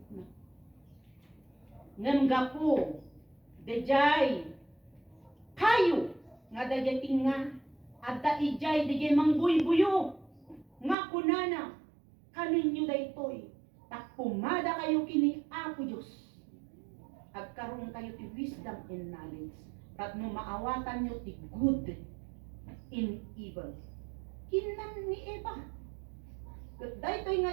na. Ngem gapo, dejay, kayo, nga dejay tinga, at da ijay dejay mangbuybuyo, nga kunana, kaninyo daytoy, tak pumada kayo kini Apo Diyos. Agkaroon kayo ti wisdom and knowledge. At no maawatan nyo ti good in evil. Kinan ni Eva. Daytoy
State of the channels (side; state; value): left; drops out; at 11.0 s